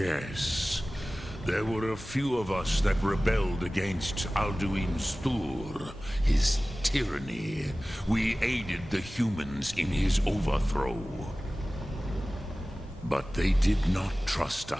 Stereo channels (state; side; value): normal; both; correlation 0.97